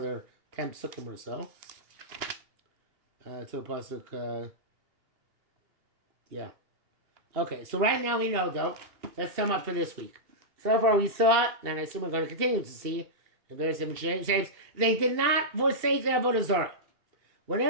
10 pesukim or so. To a pasuk, yeah. Okay, so right now we know, though. Let's sum up for this week. So far we saw, and I assume we're going to continue to see, in various different shapes, they did not forsake their avodah zarah.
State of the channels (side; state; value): left; late; 2.7 ms